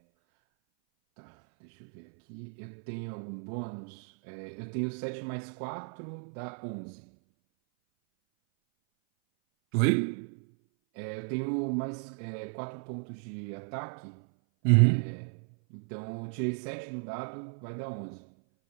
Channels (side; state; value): left; silent; 55 dB below the other